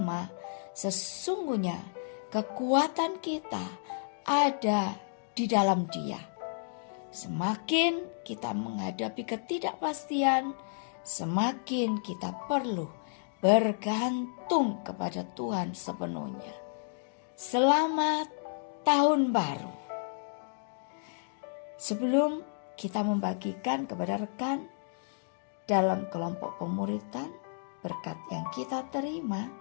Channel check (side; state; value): right; silent; digital silence